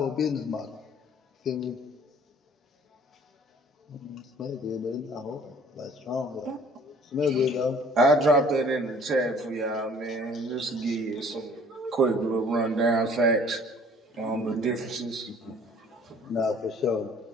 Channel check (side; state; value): both; normal; correlation 0.54